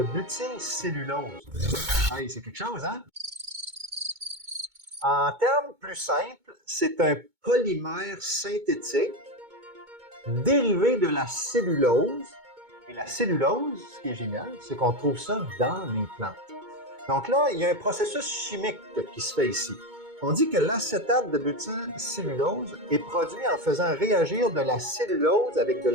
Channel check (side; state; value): left; late; 2.2 ms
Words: butylcellulose. Hey, c'est quelque chose, hein? En termes plus simples, c'est un polymère synthétique dérivé de la cellulose. Et la cellulose, ce qui est génial, c'est qu'on trouve ça dans les plantes. Donc là, il y a un processus chimique qui se fait ici. On dit que l'acétate de butylcellulose est produit en faisant réagir de la cellulose avec de